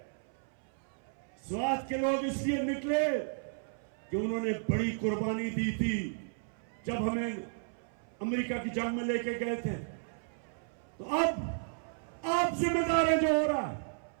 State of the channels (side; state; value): left; silent; 55 dB below the other